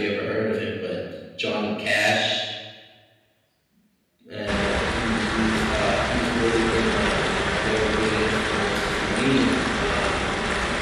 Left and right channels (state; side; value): identical; both; correlation 1.00